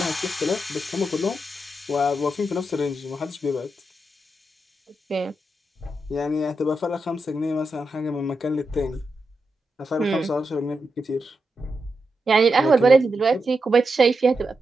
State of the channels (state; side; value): normal; both; correlation 0.86